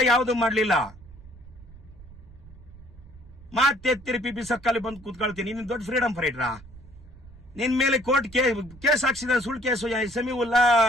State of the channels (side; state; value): right; noise; rumble, 20 dB below the sound